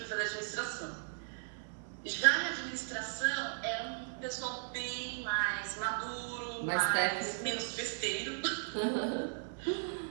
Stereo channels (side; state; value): left; silent; 53 dB below the other